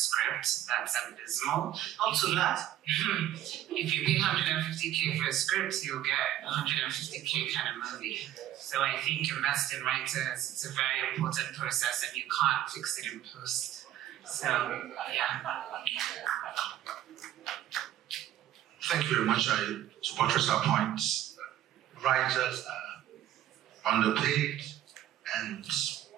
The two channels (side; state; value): left; quieter; 12.4 dB